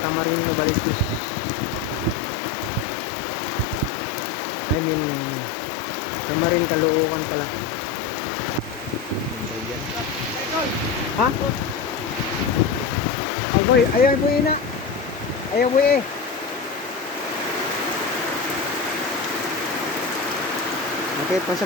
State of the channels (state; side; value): quieter; right; 5.4 dB